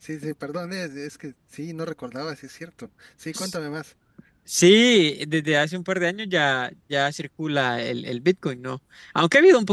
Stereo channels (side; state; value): both; identical; correlation 1.00